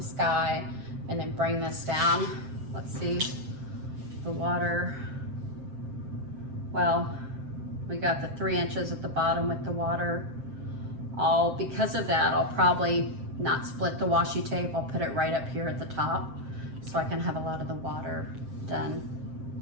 sky, and then bring this down. Let's see, the water. Well, we got the 3 inches at the bottom with the water. Because of that, I'll probably not split the washi tape. I'll put it right up here at the top so I can have a lot of the water done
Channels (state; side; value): late; left; 7.6 ms